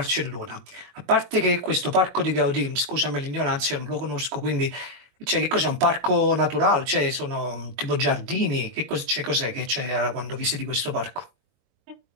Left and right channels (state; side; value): late; left; 22 ms